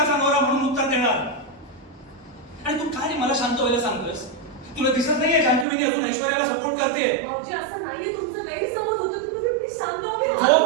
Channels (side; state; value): left; drops out; at 5.7 s